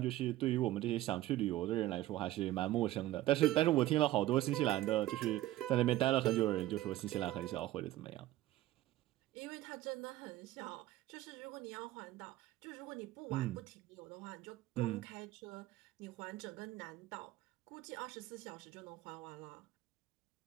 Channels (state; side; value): quieter; left; 15.5 dB